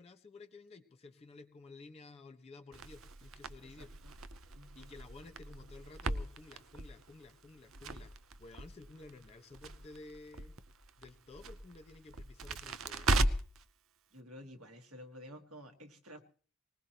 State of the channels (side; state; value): both; normal; correlation 0.75